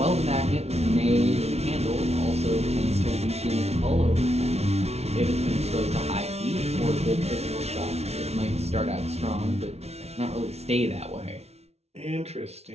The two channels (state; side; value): late; left; 0.31 ms